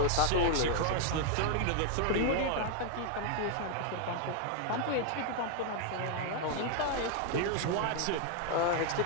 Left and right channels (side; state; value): both; different; correlation 0.00